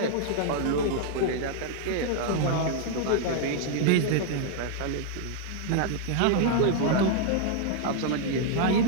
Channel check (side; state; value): both; different; correlation -0.01